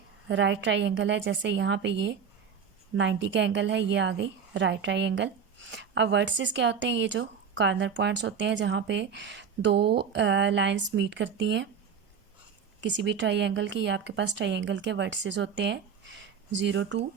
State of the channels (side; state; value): left; quieter; 6.9 dB